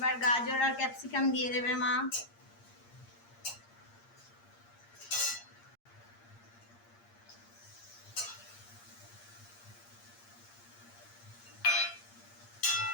গাজর আর ক্যাপসিকাম দিয়ে দেবে মা।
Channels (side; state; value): right; late; 8.6 ms